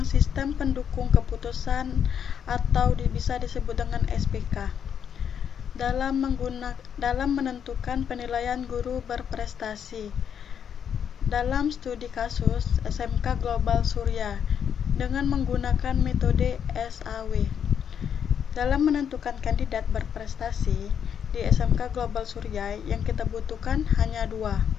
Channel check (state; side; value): quieter; right; 8.1 dB